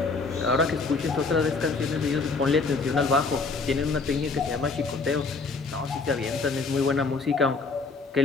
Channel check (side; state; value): right; quieter; 4.2 dB